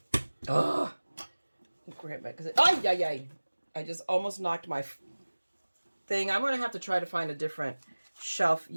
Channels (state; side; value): inverted; both; correlation -1.00